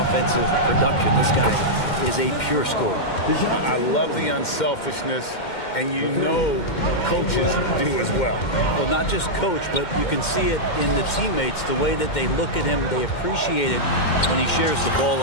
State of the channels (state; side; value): late; right; 2.1 ms